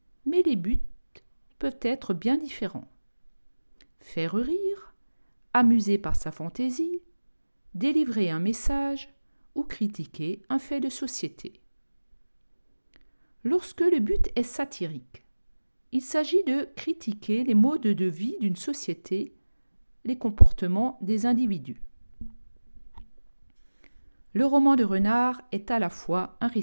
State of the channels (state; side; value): inverted; both; correlation -1.00